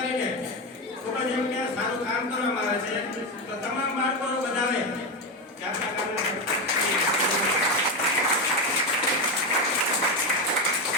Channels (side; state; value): both; normal; correlation 0.13